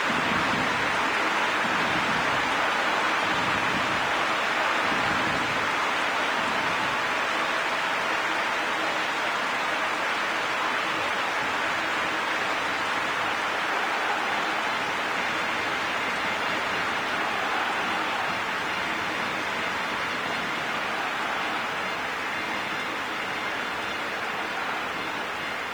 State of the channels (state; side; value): noise; right; hiss, 25 dB below the sound